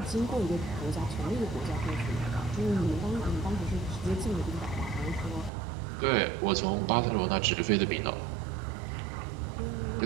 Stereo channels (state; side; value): drops out; left; at 5.5 s